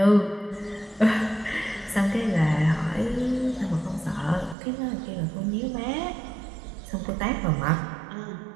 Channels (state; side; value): drops out; left; at 4.5 s